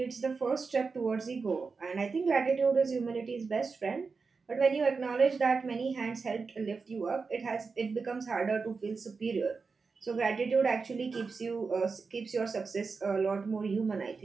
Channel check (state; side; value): quieter; left; 4.7 dB